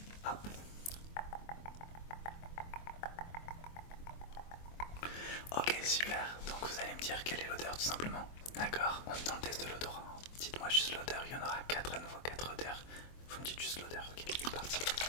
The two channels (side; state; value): right; late; 24 ms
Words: Hop. Ok, super, donc vous allez me dire quelle est l'odeur tout simplement. D'accord, on est dans le test de l'odorat. Dites-moi juste l'odeur, il y en aura 4 à nouveau, 4 odeurs. Vous me dites juste l'odeur, ok, c'est parti.